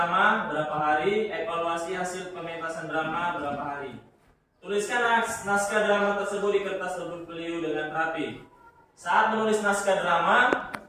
berapa hari, evaluasi hasil pementasan drama berapa hari. Tuliskan naskah drama tersebut di kertas berpeliu dengan rapi. Saat menulis naskah drama,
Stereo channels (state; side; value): identical; both; correlation 1.00